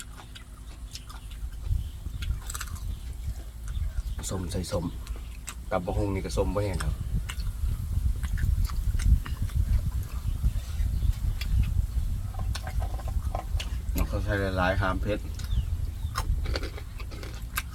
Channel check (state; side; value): identical; both; correlation 1.00